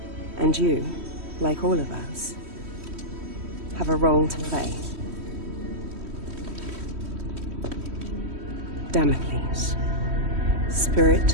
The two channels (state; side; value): late; left; 3.1 ms